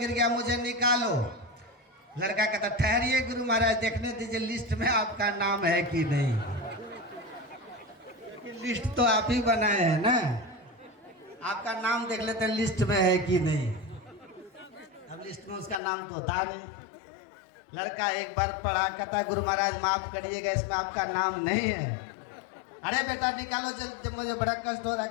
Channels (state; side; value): drops out; right; at 15.8 s